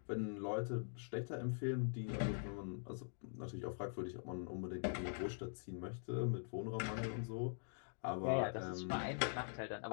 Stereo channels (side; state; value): right; silent; digital silence